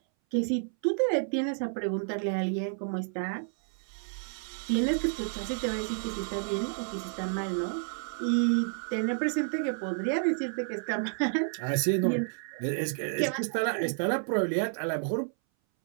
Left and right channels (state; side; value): silent; left; 57 dB below the other